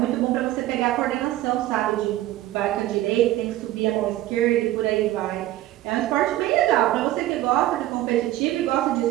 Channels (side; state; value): left; quieter; 15.2 dB